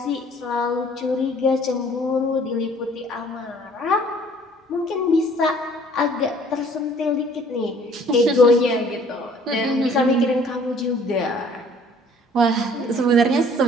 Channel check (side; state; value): both; normal; correlation 0.55